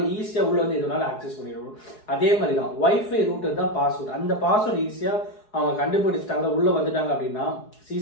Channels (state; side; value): late; right; 4.8 ms